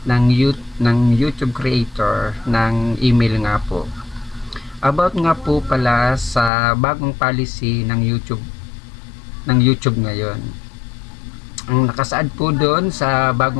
ng YouTube creator ng email nga po. About nga po pala sa bagong policy ng YouTube ngayon. Ang nakasaad po doon sa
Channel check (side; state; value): right; drops out; at 6.5 s